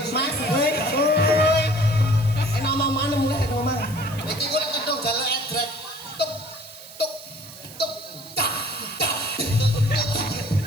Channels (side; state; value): right; noise; hiss, 17 dB below the sound